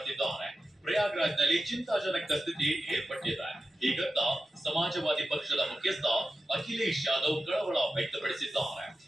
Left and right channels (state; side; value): normal; both; correlation 0.91